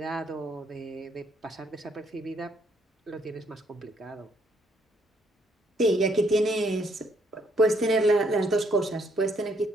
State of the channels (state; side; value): normal; both; correlation 0.70